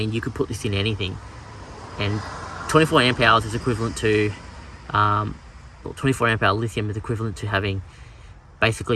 you could put this in anything, and 24 amp hours is equivalent to 24 amp hour lithium is equivalent to having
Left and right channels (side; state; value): both; identical; correlation 1.00